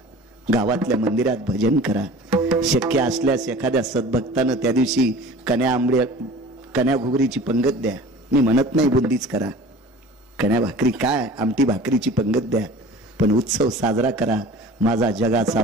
गावातल्या मंदिरात भजन करा. शक्य असल्यास एखाद्या सद्भक्तानं त्या दिवशी कन्या घुगरीची पंगत द्या. मी म्हणत नाही बुंदीच करा, कन्या भाकरी काय, आमटी भाकरीची पंगत द्या, पण उत्सव साजरा करा. माझा जगाचा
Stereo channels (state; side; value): normal; both; correlation 0.42